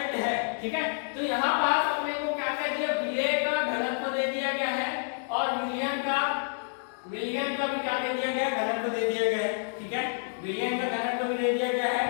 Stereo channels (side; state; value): right; silent; digital silence